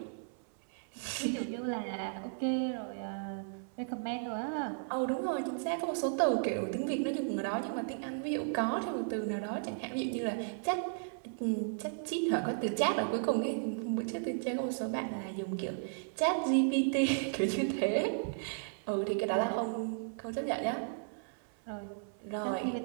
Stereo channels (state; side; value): silent; left; 55 dB below the other